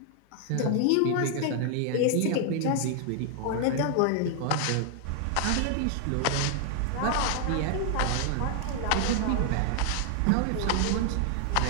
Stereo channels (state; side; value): different; both; correlation 0.00